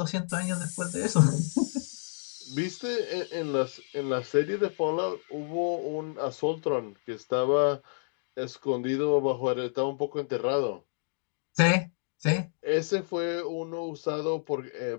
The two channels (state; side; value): silent; right; digital silence